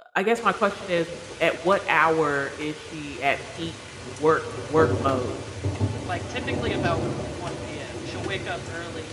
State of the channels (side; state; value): both; identical; correlation 1.00